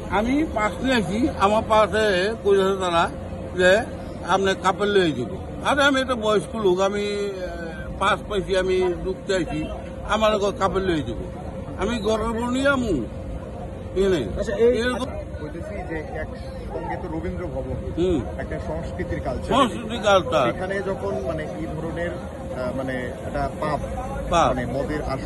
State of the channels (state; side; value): identical; both; correlation 1.00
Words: আমি পাশ নিয়েছি। আমার পাশে কইছে তারা যে আপনার কাপড় লয়ে যাব। আরে আমি একটা বয়স্ক লোক, আমি পাস পাইছি, আমি ঢুকতে আইছি, আমার কাপড় লয়ে যাব। আমি ঘরের বউ নিয়ে আমু এরকম রবীন্দ্র ভবন একটা সংস্কৃতির কালচার, এখানে যখন মানে এই ধরনের মানে একটা পাপ মানে মদের